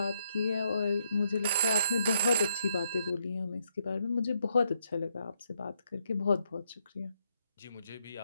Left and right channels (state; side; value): inverted; both; correlation -0.75